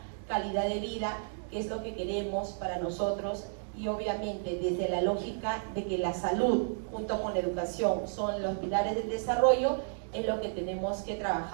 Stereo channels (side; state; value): left; silent; digital silence